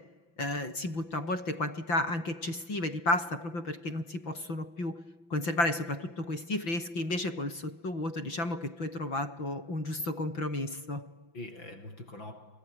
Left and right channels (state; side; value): late; right; 5.9 ms